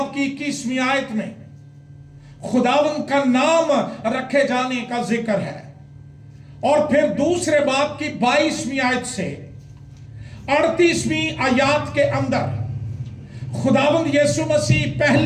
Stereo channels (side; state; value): both; identical; correlation 1.00